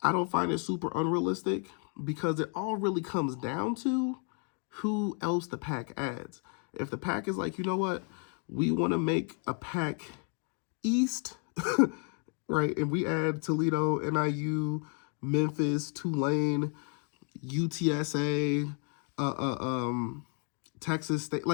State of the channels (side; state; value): right; quieter; 39.9 dB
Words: I don't find it super unrealistic because it all really comes down to who else the PAC adds. If the PAC is like, you know what, we want to make a PAC East, right? And we add Toledo, NIU, Memphis, Tulane, UTSA, Texas State.